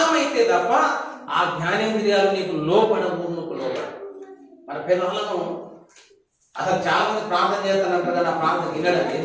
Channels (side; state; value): both; identical; correlation 1.00